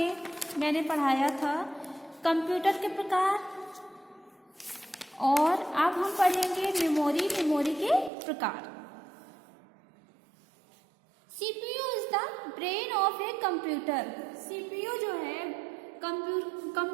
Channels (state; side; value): drops out; left; at 8.1 s